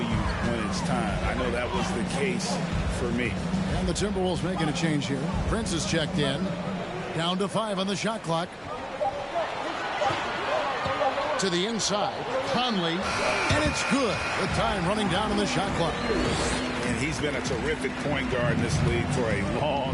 when it's time. I know that was the case for me. And the Timberwolves making a change here. Prince is checked in. Down to 5 on the shot clock. To the inside. Conley. And it's good. The time running down on the shot clock. And he's been a terrific point guard in this league for a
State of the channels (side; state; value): both; identical; correlation 1.00